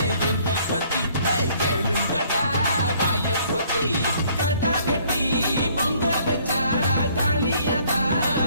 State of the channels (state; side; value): inverted; both; correlation -0.61